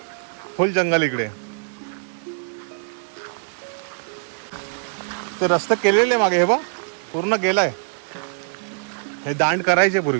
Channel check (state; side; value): silent; left; digital silence